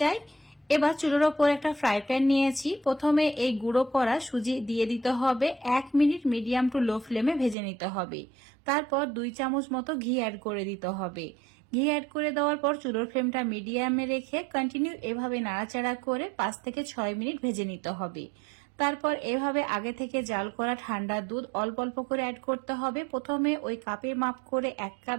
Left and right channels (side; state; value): left; drops out; at 7.6 s